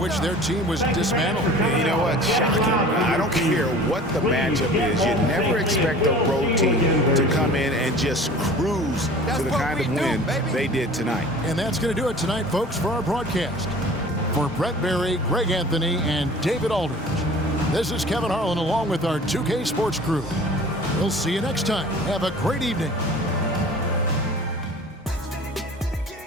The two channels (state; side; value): normal; both; correlation 0.44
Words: their team was dismantled. You know what? Shocking. I don't care what the matchup is. You never expect a road team to come in and just cruise to the kind of win they did tonight. And that's going to do it tonight, folks, for our broadcast. For Brett Berry, Greg Anthony, and David Aldridge, this is Kevin Harlan along with our 2K Sports crew. We'll see you next time. Have a great evening.